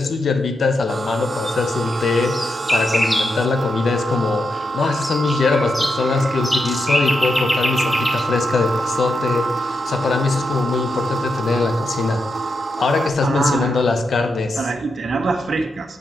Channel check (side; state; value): both; normal; correlation 0.85